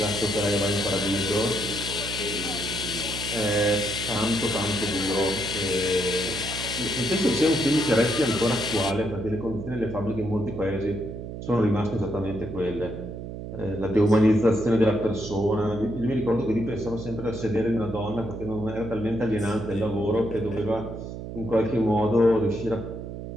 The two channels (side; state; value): right; noise; hum, 8 dB below the sound